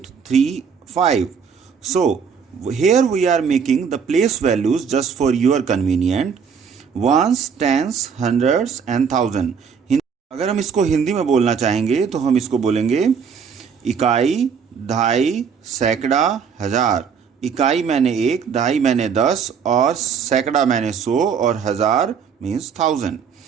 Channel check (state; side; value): quieter; left; 6.6 dB